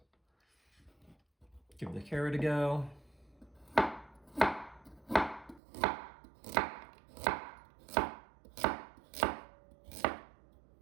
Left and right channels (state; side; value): drops out; left; at 5.6 s